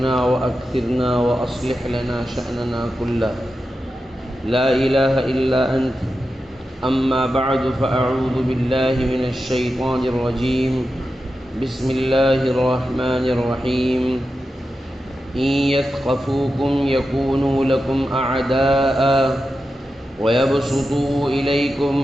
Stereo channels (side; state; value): both; normal; correlation 0.90